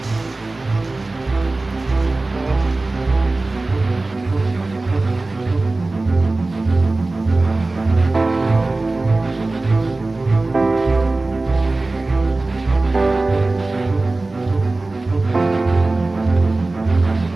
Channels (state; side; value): quieter; left; 3.2 dB